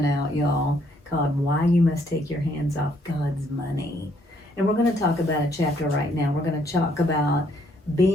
out, y'all, called Why You Must Take Your Hands Off God's Money. And we're going to talk about a chapter right now. We're going to talk about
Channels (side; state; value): both; normal; correlation 0.68